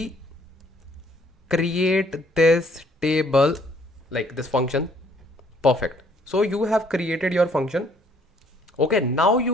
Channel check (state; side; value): normal; both; correlation 0.63